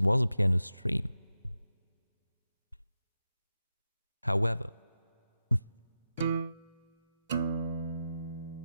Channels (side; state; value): both; inverted; correlation -0.91